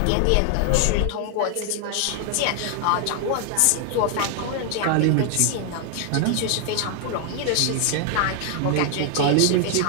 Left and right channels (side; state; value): both; different; correlation 0.00